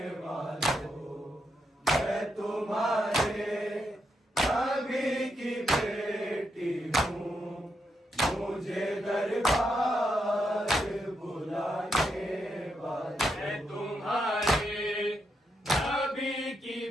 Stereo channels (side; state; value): both; normal; correlation 0.81